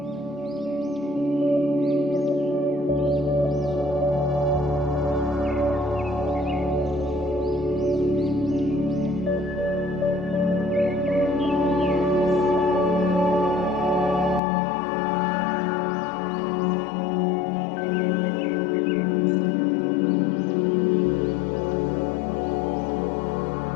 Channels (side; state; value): right; drops out; at 14.4 s